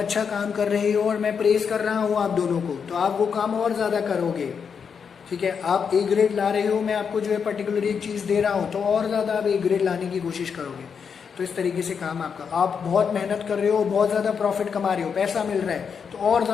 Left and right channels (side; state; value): right; quieter; 6.5 dB